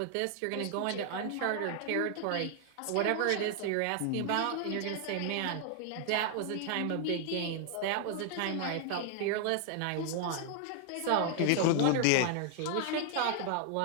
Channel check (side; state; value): both; different; correlation 0.00